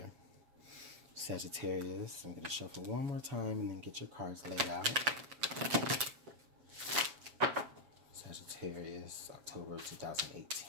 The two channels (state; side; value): late; left; 7.4 ms